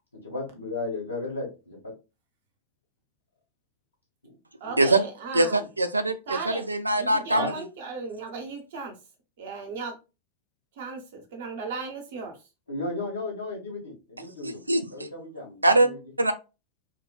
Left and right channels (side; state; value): both; inverted; correlation -0.71